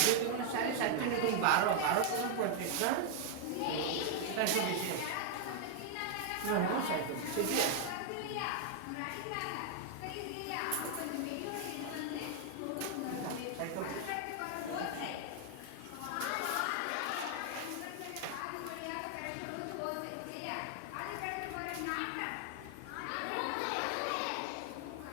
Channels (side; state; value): both; different; correlation 0.00